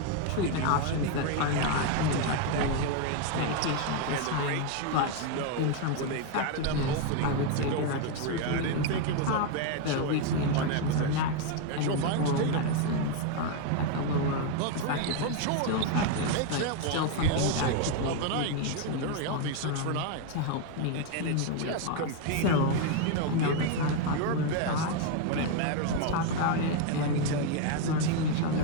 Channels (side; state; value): both; different; correlation 0.01